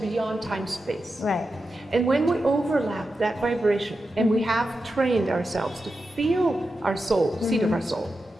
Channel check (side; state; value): both; normal; correlation 0.90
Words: time-space. Right. And when we overlap that vibration, and we have trained ourselves to feel our soul, seat of our soul,